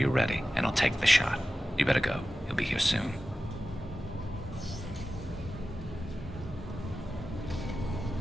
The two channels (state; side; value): normal; both; correlation 0.94